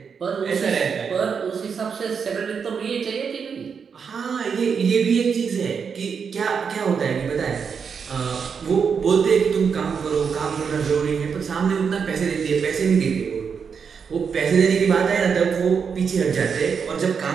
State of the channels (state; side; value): quieter; left; 6.3 dB